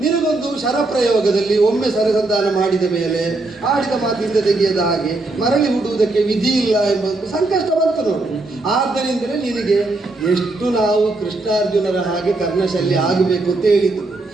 ನಿನಗೊಂದು ಶರಪ್ರಯೋಗದಲ್ಲಿ ಒಮ್ಮೆ ಸರಸಂಧಾನ ಮಾಡಿದ ಮೇಲೆ ಆಡಿದ ಮಾತಿಂದ ತೆಗೆಯದ ಹಾಗೆ ಮರಳಿ ಹುಡುವುದಕ್ಕೆ ವಿಧಿ ಇಲ್ಲ ಎಂಬ ಸಂಕಷ್ಟ ಬಂತು ನೋಡಿ. ಆದ್ದರಿಂದಲೇ ನಿನಗೆ ಎಷ್ಟು ನಾವು ಕೃಷ್ಣಾರ್ಜುನರ ಹಾಗೆ ಕರ್ಣಶಲ್ಯ ಆಗಬೇಕು ಅಂತ ಹೇಳಿದ್ದು.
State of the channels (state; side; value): quieter; left; 3.1 dB